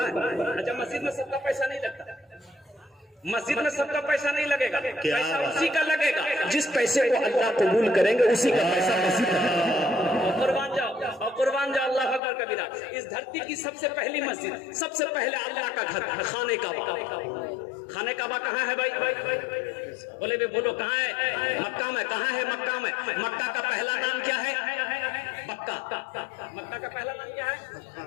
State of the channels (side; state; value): right; drops out; at 12.2 s